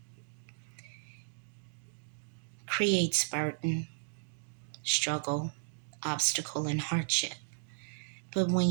creates burden, struggle, obstacle, and hardship. But when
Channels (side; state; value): left; silent; digital silence